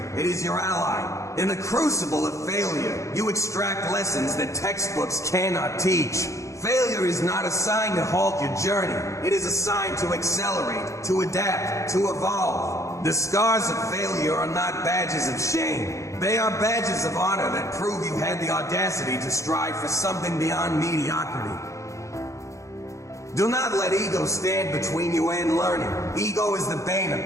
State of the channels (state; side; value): late; right; 0.15 ms